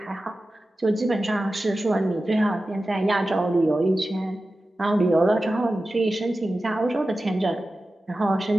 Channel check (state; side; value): normal; both; correlation 0.94